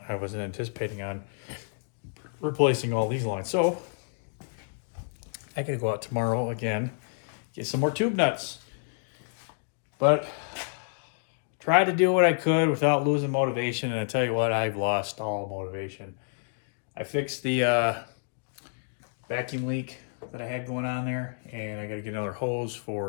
I wasn't anticipating on replacing all these lines. So I gotta go out tomorrow again, get some more tube nuts. But try to do what I could without losing motivation, and I tell you what, I've lost all motivation. I fixed the vacuum leak that I had going on there, and I got to get another hose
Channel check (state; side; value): silent; right; digital silence